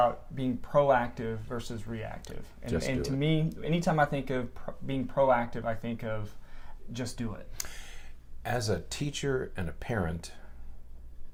being proactive versus reactive. And to me, anytime I think of being proactive, I think of just do it. As a teacher and a parent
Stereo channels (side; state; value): both; identical; correlation 1.00